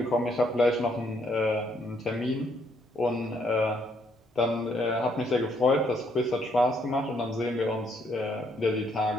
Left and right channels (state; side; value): normal; both; correlation 0.71